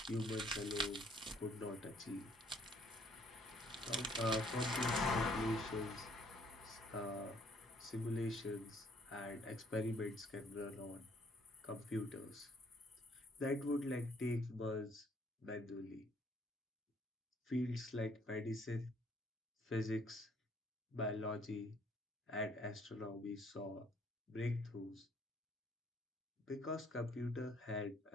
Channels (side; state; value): both; normal; correlation 0.63